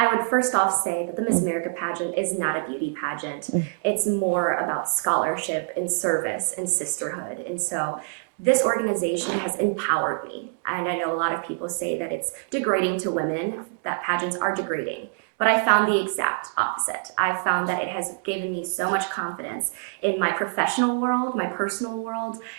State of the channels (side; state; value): left; silent; digital silence